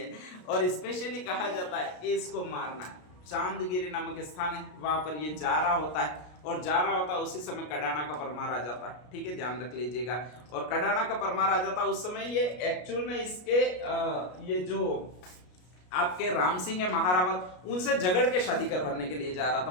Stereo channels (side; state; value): right; late; 33 ms